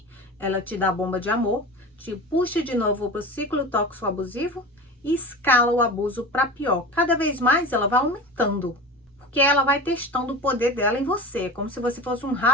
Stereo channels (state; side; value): normal; both; correlation 0.31